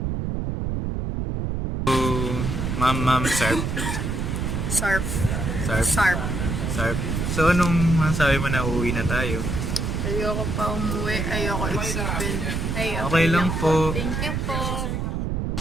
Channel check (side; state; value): right; noise; rumble, 1 dB below the sound